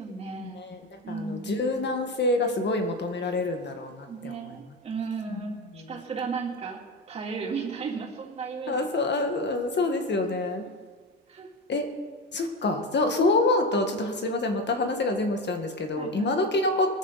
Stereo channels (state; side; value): normal; both; correlation 0.21